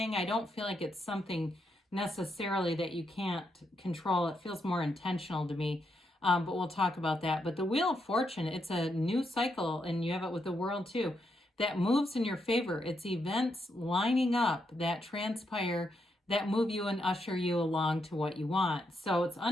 I don't feel like it's something necessarily that you can't control. It feels more intentional to me. But we'll talk about that. But the Wheel of Fortune, it's a new cycle, and you have it with the World too, that moves in your favor. It's events lining up that transpire, that move you and usher you along to what you want. So it's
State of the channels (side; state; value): both; normal; correlation 0.80